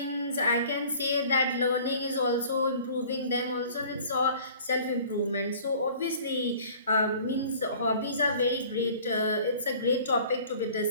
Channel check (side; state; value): both; inverted; correlation -0.49